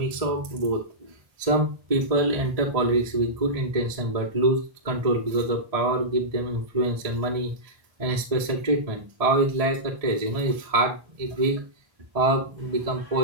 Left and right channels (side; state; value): left; late; 1.7 ms